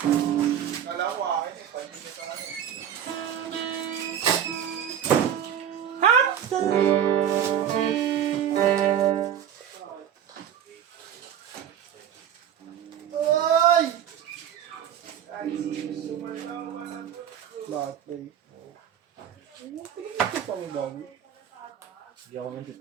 Bakit ba eh? Ito pa mo bago. Hindi ako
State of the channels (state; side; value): quieter; left; 9.5 dB